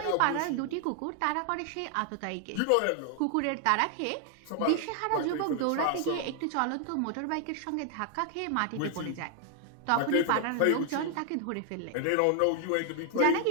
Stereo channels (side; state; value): both; different; correlation 0.00